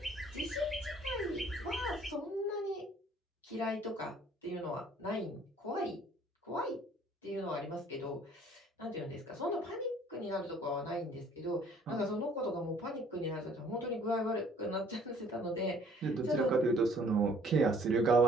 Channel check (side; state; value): both; normal; correlation 0.57